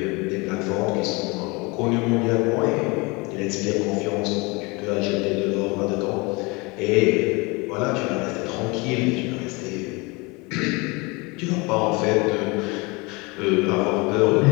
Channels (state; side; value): quieter; right; 26.5 dB